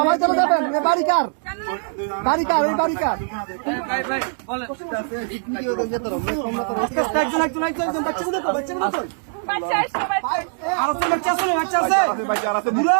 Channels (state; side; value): silent; left; digital silence